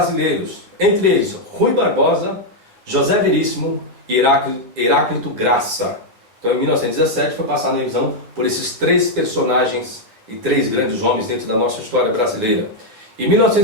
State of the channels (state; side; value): late; left; 9.6 ms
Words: entre eles Rui Barbosa, José Veríssimo e Heráclito Graça. Então em 1917 foi passada a revisão por esses três personagens e três grandes homens dentro da nossa história brasileira. Em